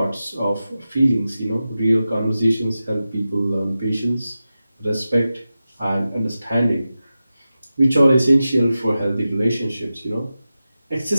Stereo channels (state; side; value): inverted; both; correlation -0.93